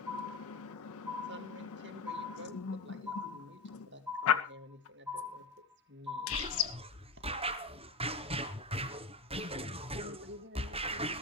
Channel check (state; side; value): quieter; right; 3.7 dB